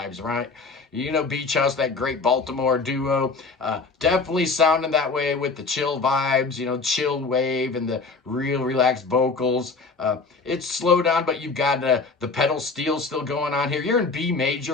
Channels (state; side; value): quieter; right; 4.2 dB